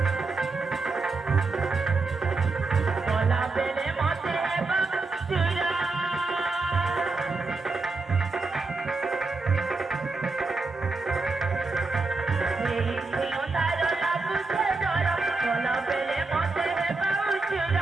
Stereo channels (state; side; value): quieter; left; 3.7 dB